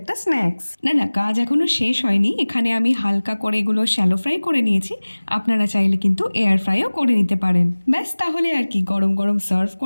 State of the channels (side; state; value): both; inverted; correlation -1.00